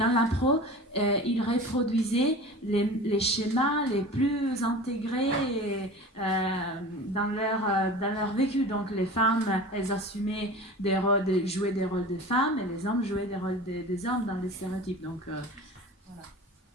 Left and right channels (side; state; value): both; normal; correlation 0.36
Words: l'impro, ils reproduisaient les schémas les plus intégrés dans leur vécu. Donc les femmes, elles assumaient jouaient des rôles de femmes, et les hommes jouaient des rôles des hommes dans les stéréotypes. Donc voilà.